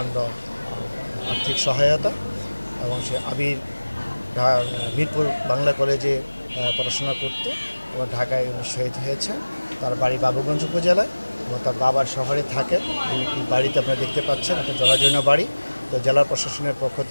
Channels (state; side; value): inverted; both; correlation -1.00